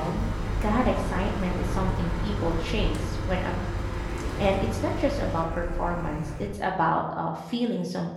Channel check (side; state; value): both; identical; correlation 1.00